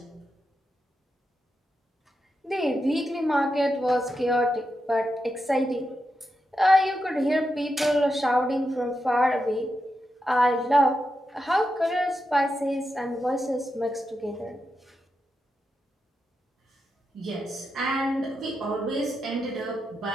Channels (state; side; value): normal; both; correlation 0.87